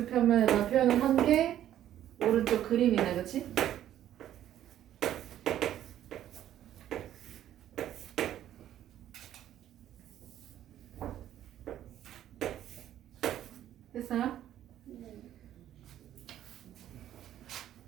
평면에다 표현을 한 게 오른쪽 그림이네. 그치? 됐어요?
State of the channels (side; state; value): left; quieter; 11.7 dB